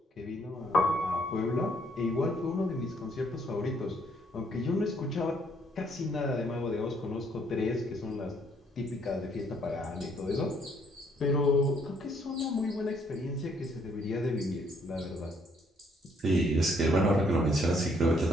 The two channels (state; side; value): normal; both; correlation 0.68